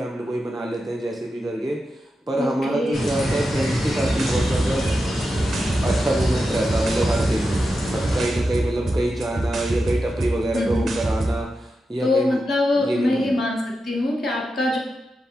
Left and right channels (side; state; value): both; normal; correlation 0.89